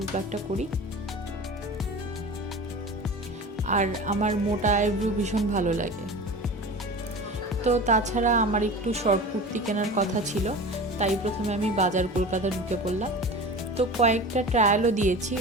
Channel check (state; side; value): normal; both; correlation 0.34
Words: প্লাকটা করি। আর আমার মোটা আইব্রু ভীষণ ভালো লাগে। তো তাছাড়া আমার একটু শর্ট কুর্তি কেনার কথা ছিল, তাই প্রথমে আমি বাজার কলকাতা ঢুকে পড়লাম। তো কয়েকটা ট্রায়ালও দিয়েছি,